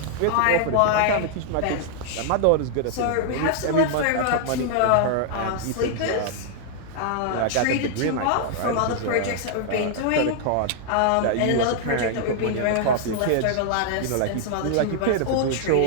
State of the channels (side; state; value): both; different; correlation 0.00